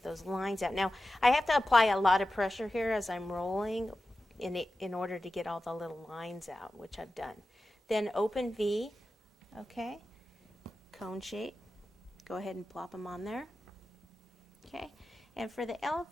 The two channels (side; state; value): both; normal; correlation 0.93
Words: those lines out. Now, I have to apply a lot of pressure here as I'm rolling in order to get all the little lines out, which I've done. Then open V, okay, cone shape. Go ahead and plop them on there. Okay, and for the